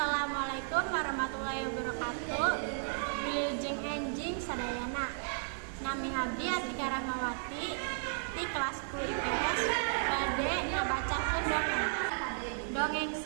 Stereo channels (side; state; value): left; silent; 55 dB below the other